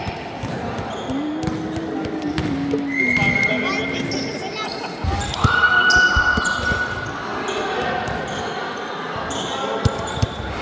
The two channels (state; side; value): identical; both; correlation 1.00